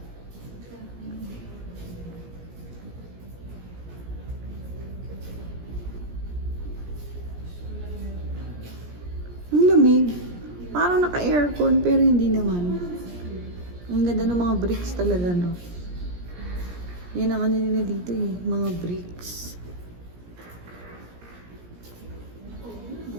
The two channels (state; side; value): late; left; 17 ms